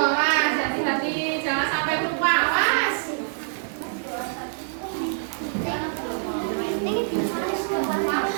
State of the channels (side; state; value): left; silent; digital silence